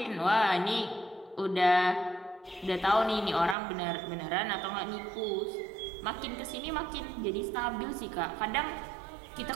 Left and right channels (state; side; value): drops out; left; at 3.6 s